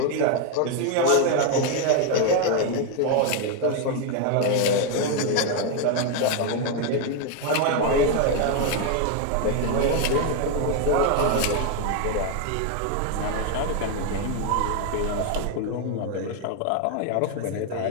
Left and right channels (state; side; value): different; both; correlation 0.01